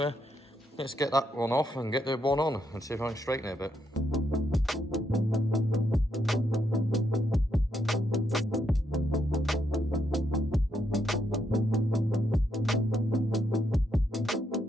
let's get that one off and get the one on and see if I can straighten it a bit.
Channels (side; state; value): both; normal; correlation 0.78